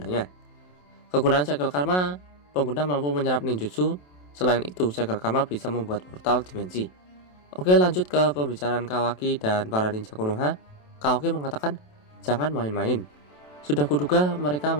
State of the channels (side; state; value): right; late; 27 ms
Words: Kegunaan segel karma, pengguna mampu menyerap ninjutsu. Selain itu, segel karma bisa membuat portal dimensi. Oke, lanjut ke pembicaraan Kawaki dan para ninja Konoha. Kawaki mengatakan, jangan main-main. Sudah kuduga mereka